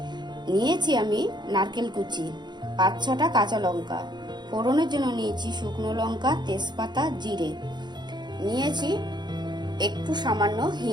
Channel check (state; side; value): late; left; 0.21 ms